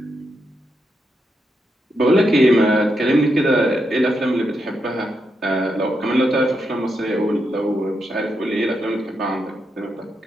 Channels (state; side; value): normal; both; correlation 0.83